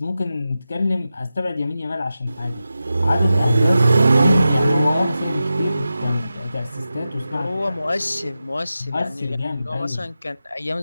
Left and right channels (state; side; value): inverted; both; correlation -0.92